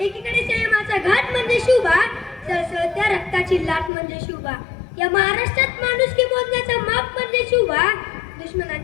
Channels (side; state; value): right; drops out; at 3.9 s